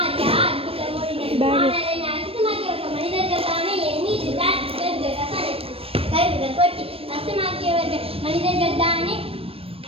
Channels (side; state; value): left; late; 0.28 ms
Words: அற்புதம் ஓடினது. ஆனால் என்னை அசுத்தமாக்கியவர்கள் மனிதர்கள் தானே. என் மீது கருவிகள் கொட்டி அசுத்தமாக்கியவர்கள் மனிதர்கள் தானே.